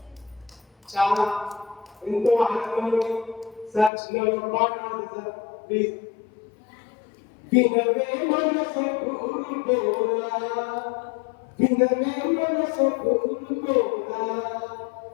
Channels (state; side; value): drops out; right; at 3.9 s